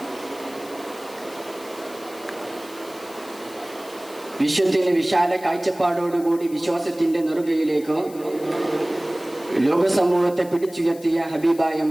വിശ്വത്തിന് വിശാല കാഴ്ചപ്പാടോടുകൂടി വിശ്വാസത്തിന്റെ നെറുകയിലേക്ക് ലോകസമൂഹത്തെ പിടിച്ചുയർത്തിയ ഹബീബായ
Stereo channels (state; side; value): noise; left; hiss, 20 dB below the sound